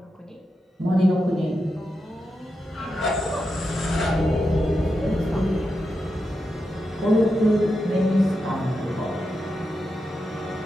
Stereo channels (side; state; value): both; normal; correlation 0.88